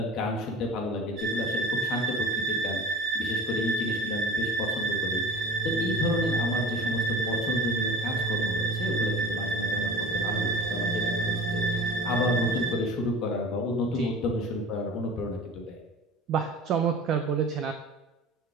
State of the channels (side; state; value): both; normal; correlation 0.40